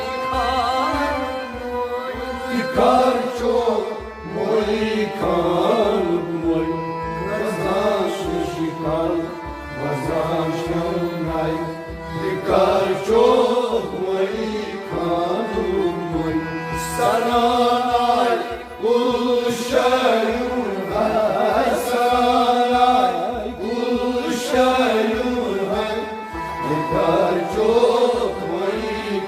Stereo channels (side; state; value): both; identical; correlation 1.00